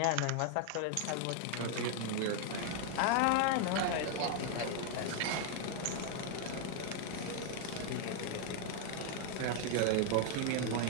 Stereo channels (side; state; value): both; different; correlation 0.00